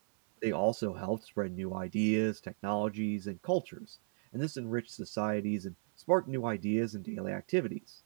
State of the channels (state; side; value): silent; left; 54 dB below the other